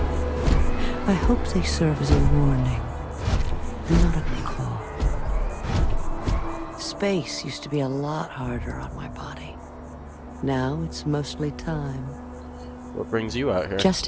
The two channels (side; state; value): both; identical; correlation 1.00